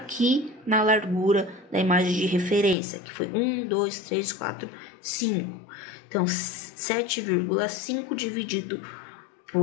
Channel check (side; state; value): right; drops out; at 2.8 s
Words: na largura da imagem de referência, que foi 1, 2, 3, 4, 5. Então, 7,5 dividido